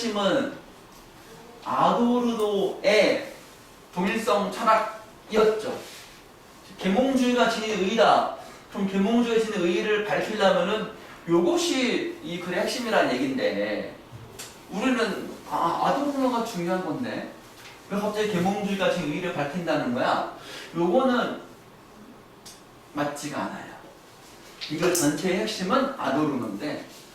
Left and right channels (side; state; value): both; identical; correlation 1.00